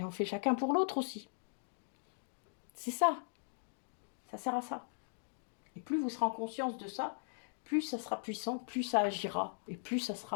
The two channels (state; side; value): silent; right; digital silence